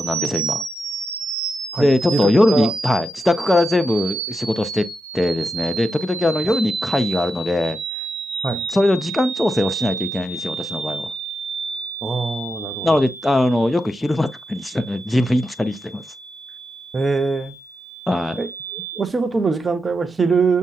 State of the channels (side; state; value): both; normal; correlation 0.87